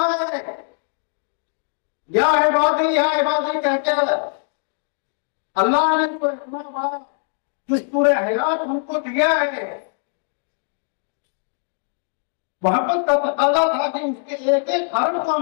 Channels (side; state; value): right; silent; digital silence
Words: ہے، یا عبادی کہہ کے اللہ نے تو اتنا بڑا دستور حیات ہم کو دیا ہے۔ محبت کا تقاضا تھا کہ اس کے ایک ایک حرف کو